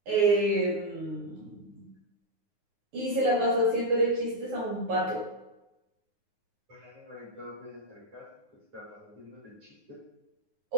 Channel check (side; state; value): left; late; 9.6 ms